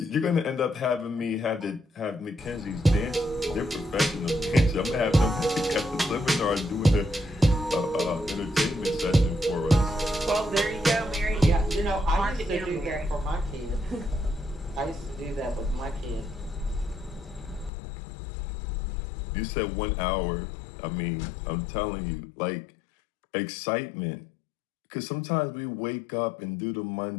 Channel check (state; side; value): drops out; right; at 17.7 s